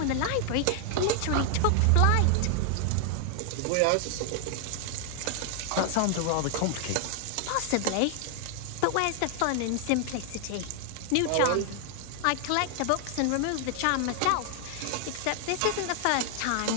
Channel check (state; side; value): different; both; correlation 0.00